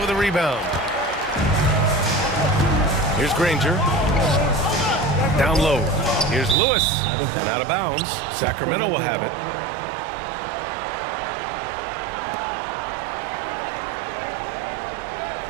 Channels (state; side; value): drops out; left; at 6.6 s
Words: a rebound. Here's Granger. Down low. Here's Lewis. And out of bounds. Sacramento will have it.